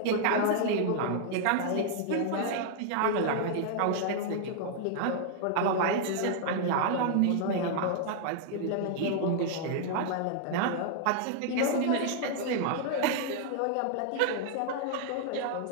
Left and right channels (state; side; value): different; both; correlation 0.00